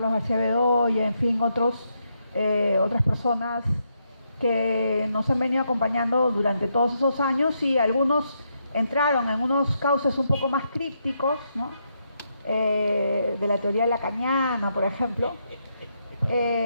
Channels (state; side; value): inverted; both; correlation -0.80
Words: García Bedoya, en fin, otras personas que nos han venido acompañando durante todos esos años, y algunos entraron en unos cauces un poco más crípticos, ¿no? De la teoría lacaniana, por ejemplo,